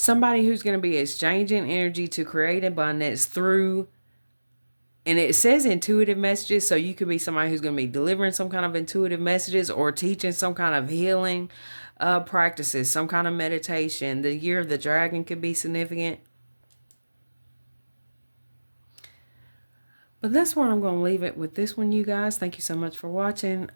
who's going to be exchanging energy to create abundance through, and it says intuitive messages, so you could be somebody who's going to be delivering some kind of intuitive messages or teaching some kind of healing practices, some kind of meditation. The year of the dragon could be significant. But that's where I'm going to leave it with this one, you guys. Thank you so much for watching.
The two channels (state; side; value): inverted; both; correlation -1.00